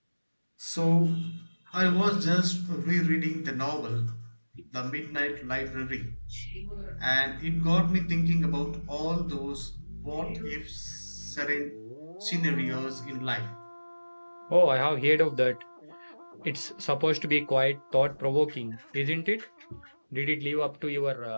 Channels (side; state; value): both; inverted; correlation -1.00